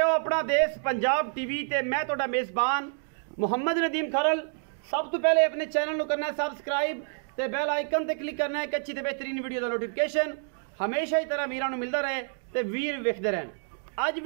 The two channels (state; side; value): silent; left; 59 dB below the other